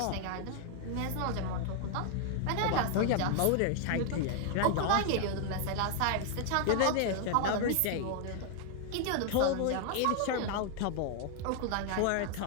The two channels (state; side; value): different; both; correlation 0.00